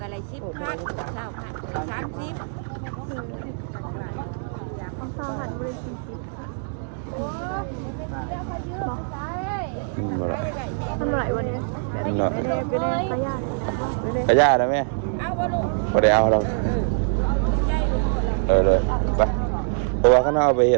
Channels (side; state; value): left; silent; digital silence